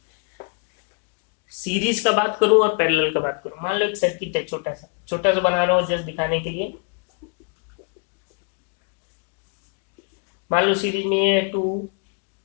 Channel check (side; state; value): right; quieter; 37.6 dB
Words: सीरीज का बात करूं और पैरेलल का बात करूं, मान लो एक सर्किट है छोटा सा, छोटा सा बना रहा हूँ जस्ट दिखाने के लिए। मान लो सीरीज में ये 2